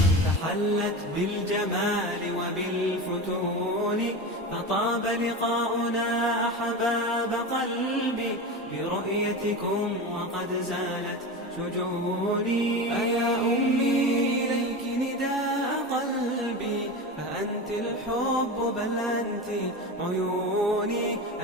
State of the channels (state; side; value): normal; both; correlation 0.25